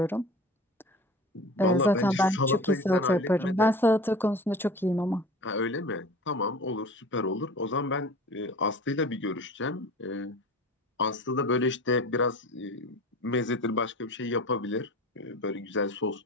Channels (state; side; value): normal; both; correlation 0.38